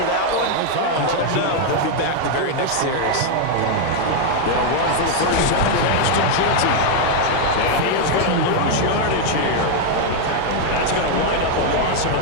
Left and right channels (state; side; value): different; both; correlation 0.00